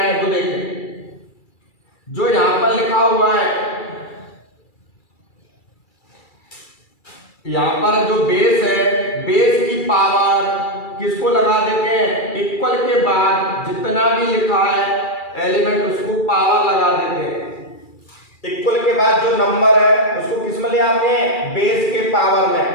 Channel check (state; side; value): late; right; 2.3 ms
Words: वो देखें। जो यहां पर लिखा हुआ है, यहां पर जो बेस है, बेस की पावर किसको लगा देते हैं, इक्वल के बाद जितना भी लिखा है एलिमेंट उसको पावर लगा देते हैं। इक्वल के बाद जो नंबर है उसको किस में ले आते हैं, बेस के पावर में।